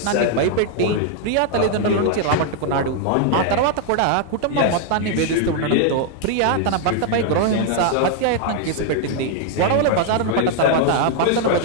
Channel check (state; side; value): different; both; correlation 0.00